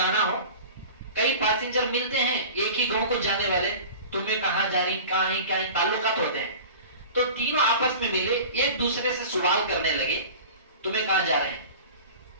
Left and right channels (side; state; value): both; inverted; correlation -0.38